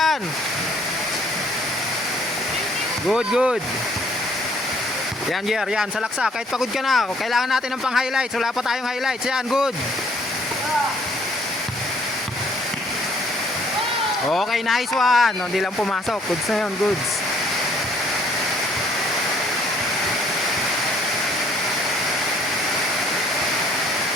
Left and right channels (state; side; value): normal; both; correlation 0.61